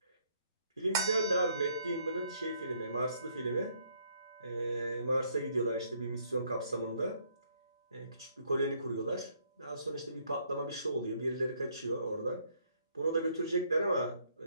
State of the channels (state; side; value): inverted; both; correlation -0.68